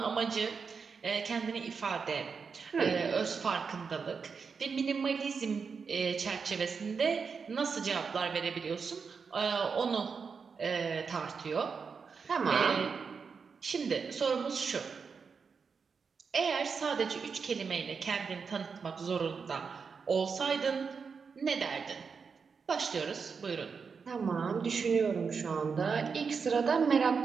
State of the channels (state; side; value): quieter; left; 5.5 dB